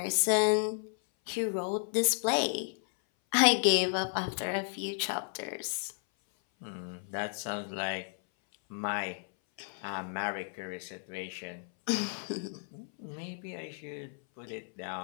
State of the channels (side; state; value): right; silent; 56 dB below the other